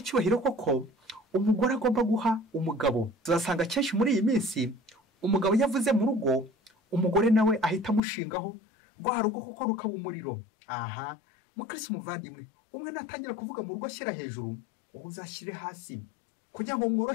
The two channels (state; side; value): drops out; right; at 8.0 s